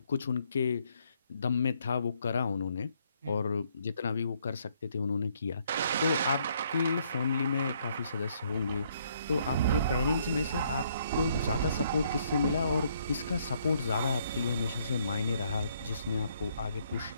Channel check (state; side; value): inverted; both; correlation -0.69